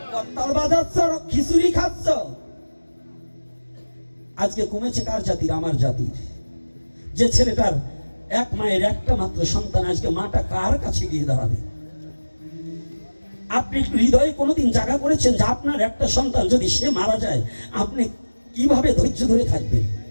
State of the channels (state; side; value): inverted; both; correlation -1.00